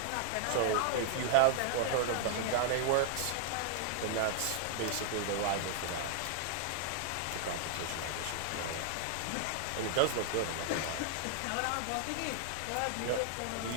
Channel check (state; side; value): different; both; correlation -0.01